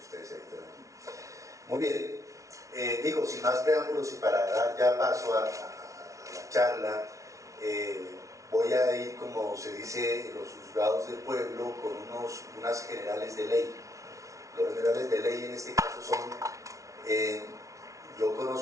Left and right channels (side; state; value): left; late; 0.15 ms